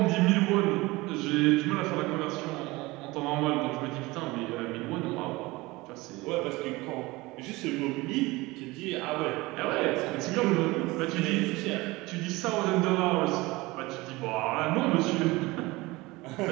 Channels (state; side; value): quieter; left; 21.5 dB